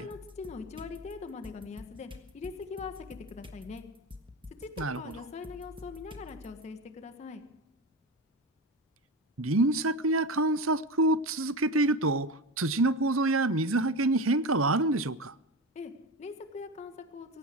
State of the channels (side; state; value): both; normal; correlation 0.23